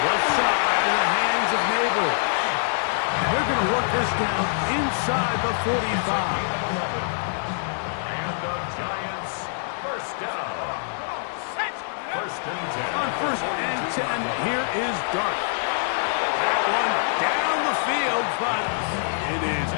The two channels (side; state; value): right; silent; 60 dB below the other